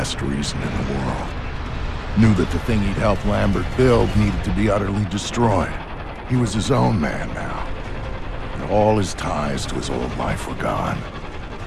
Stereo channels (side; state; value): both; identical; correlation 1.00